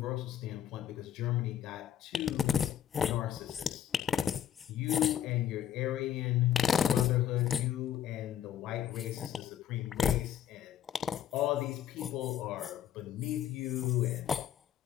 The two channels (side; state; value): right; quieter; 10.0 dB